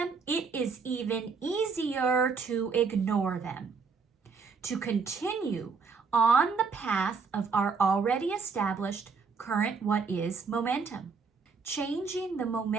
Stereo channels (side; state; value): left; quieter; 5.1 dB